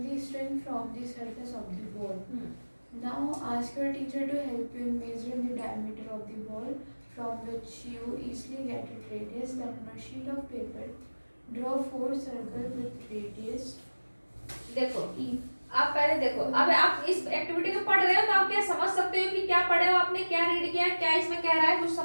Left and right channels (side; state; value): both; inverted; correlation -1.00